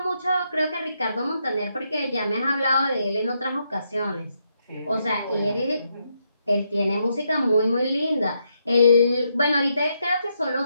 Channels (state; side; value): inverted; both; correlation -0.79